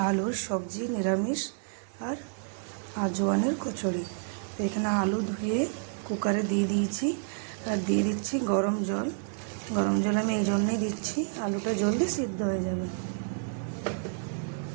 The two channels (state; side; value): silent; left; digital silence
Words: আলুর সবজি, নিরামিষ আর আজওয়ানের কচুরি। তো এখানে আলু ধুয়ে কুকারে দিয়ে দিয়েছি আর দিয়ে দিচ্ছি গরম জল। গরম জল আমি এই জন্যই দিচ্ছি, আলুটা জলদি সিদ্ধ হয়ে যাবে।